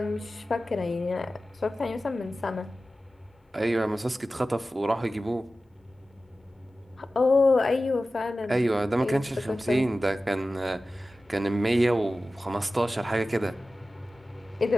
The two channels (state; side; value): normal; both; correlation 0.95